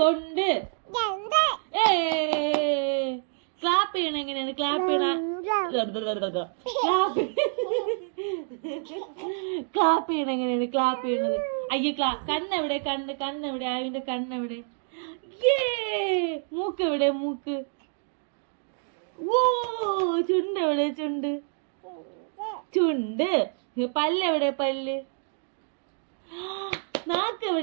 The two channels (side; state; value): left; silent; 56 dB below the other